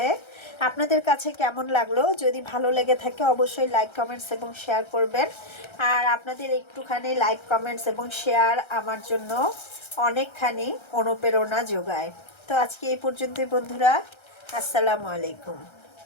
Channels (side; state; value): right; late; 1.3 ms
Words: আপনাদের কাছে কেমন লাগলো? যদি ভালো লেগে থাকে অবশ্যই লাইক, কমেন্টস এবং শেয়ার করবেন। আর আপনাদের একটুখানি লাইক, কমেন্টস এবং শেয়ার আমার জন্য অনেকখানি অনুপ্রেরণা যোগায়। তো আজকে এই পর্যন্তই বন্ধুরা, আসসালামু আলাইকুম।